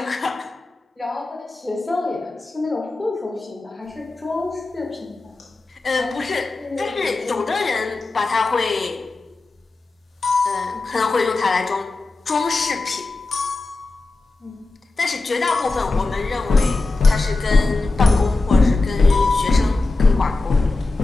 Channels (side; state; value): right; quieter; 3.3 dB